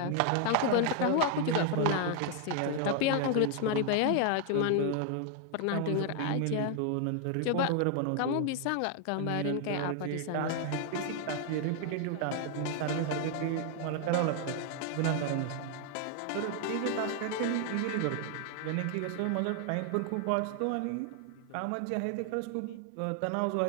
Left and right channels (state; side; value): different; both; correlation 0.00